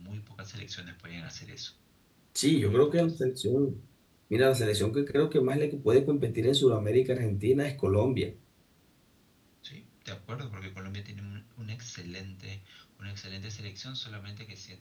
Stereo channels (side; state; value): both; identical; correlation 1.00